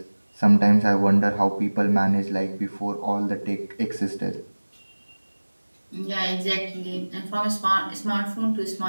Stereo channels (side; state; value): both; inverted; correlation -1.00